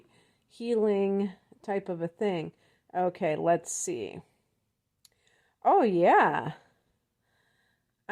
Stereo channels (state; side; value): identical; both; correlation 1.00